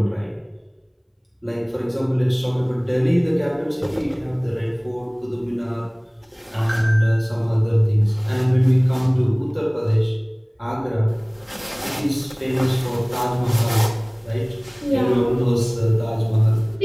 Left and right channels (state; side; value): identical; both; correlation 1.00